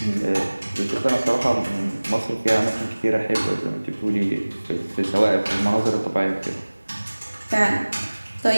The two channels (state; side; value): inverted; both; correlation -1.00